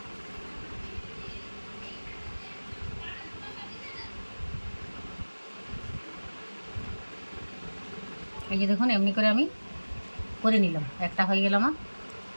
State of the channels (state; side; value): inverted; both; correlation -1.00